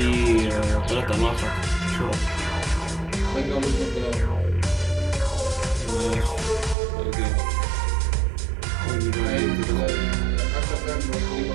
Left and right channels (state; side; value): drops out; left; at 6.8 s